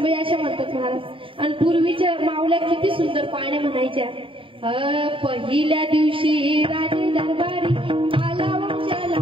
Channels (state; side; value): late; left; 0.25 ms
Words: अशा म्हणतात महाराज. आणि पूर्वीच्या मावल्या किती सुंदर पाण्या म्हणायच्या. पहिल्या दिवशी राजे दरबारी आला वंशाला